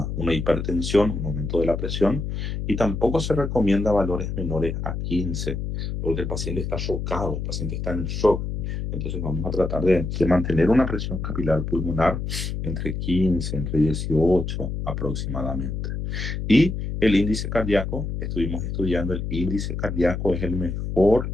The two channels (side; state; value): left; noise; hum, 4 dB below the sound